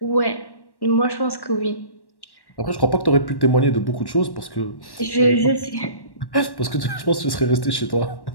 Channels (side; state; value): right; late; 1.1 ms